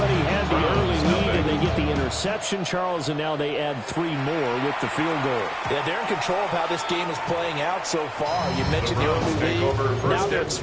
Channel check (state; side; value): identical; both; correlation 1.00